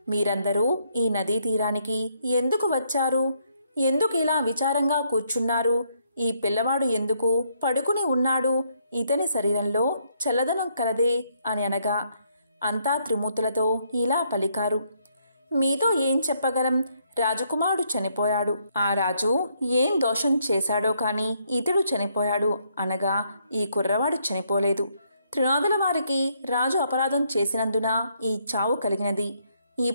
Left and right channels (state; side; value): inverted; both; correlation -0.72